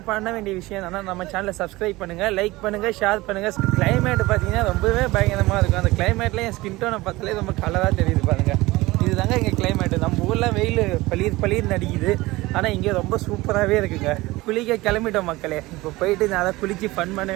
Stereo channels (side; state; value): left; quieter; 20.1 dB